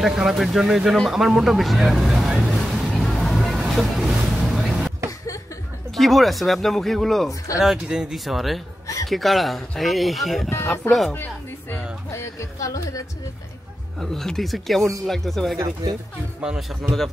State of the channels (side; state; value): both; normal; correlation 0.91